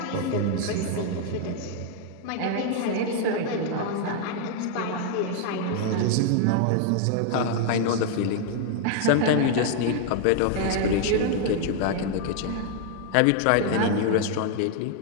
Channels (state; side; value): different; both; correlation 0.00